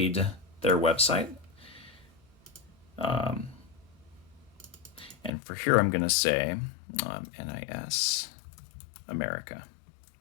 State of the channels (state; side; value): drops out; right; at 5.3 s